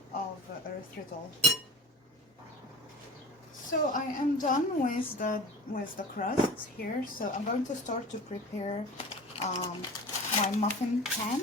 of erythritol. So I am done with the crust here, so I'm going to start to prepare my muffin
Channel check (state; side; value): normal; both; correlation 0.37